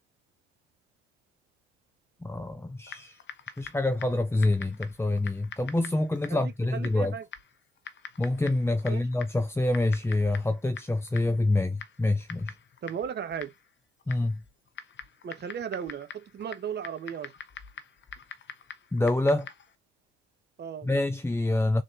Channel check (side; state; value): both; normal; correlation 0.89